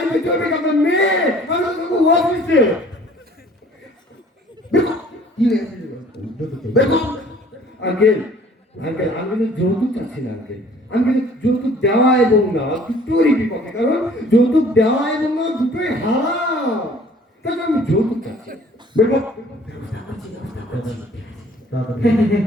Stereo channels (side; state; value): both; normal; correlation 0.54